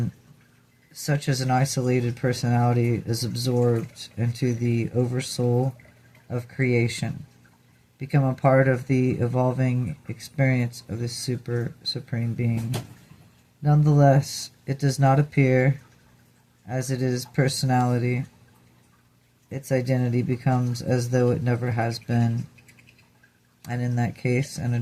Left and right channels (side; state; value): both; identical; correlation 1.00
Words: such as an isolated personality is absorbed into the oversoul of creation, become a part of the evolving experience of the supreme being. Nonetheless, it does not appear as it is personality. Its identity becomes as though it never has been, and in that case, an